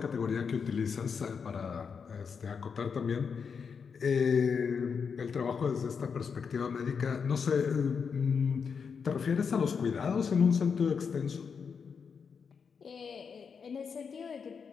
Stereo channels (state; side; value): quieter; right; 6.1 dB